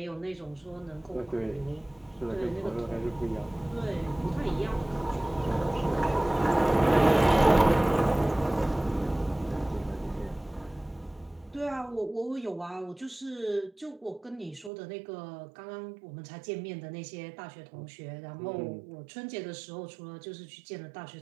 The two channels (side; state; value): left; drops out; at 14.7 s